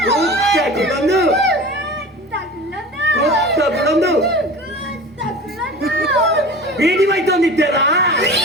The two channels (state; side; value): normal; both; correlation 0.37